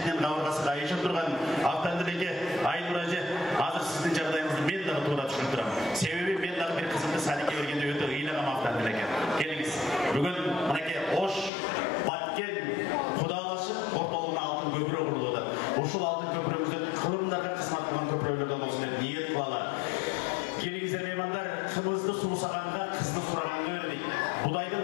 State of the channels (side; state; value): right; drops out; at 11.5 s